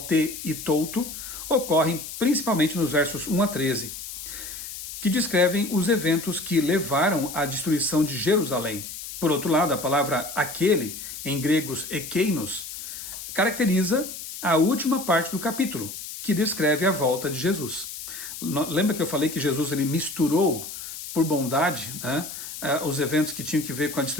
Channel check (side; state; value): left; noise; hiss, 10 dB below the sound